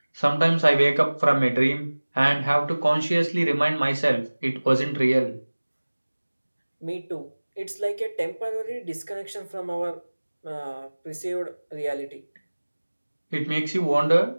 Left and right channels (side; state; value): both; inverted; correlation -1.00